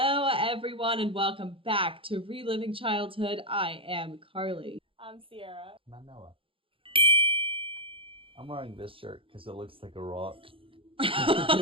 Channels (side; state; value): left; late; 0.26 ms